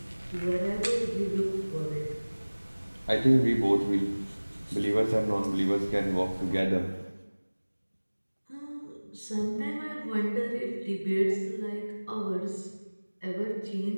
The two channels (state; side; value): inverted; both; correlation -1.00